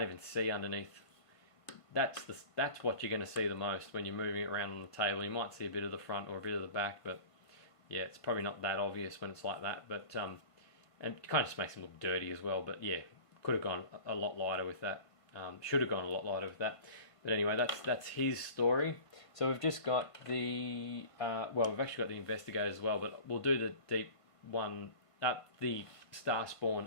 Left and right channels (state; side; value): late; right; 1.5 ms